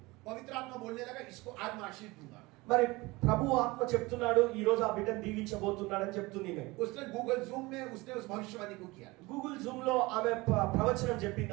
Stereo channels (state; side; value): quieter; left; 22.5 dB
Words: पवित्र आत्मा बोलने लगा इसको आज मैं आशीष दूंगा। మరి ప్రభు ఆత్మ చెప్తున్నాడు ఈ రోజు ఆ బిడ్డను దీవించబోతున్నాడని చెప్తుంది. उसने गूगल जूम में उसने उस भविष्यवाणी को किया। గూగుల్ జూమ్ లో ఆమె ప్రవచనం చెప్పింది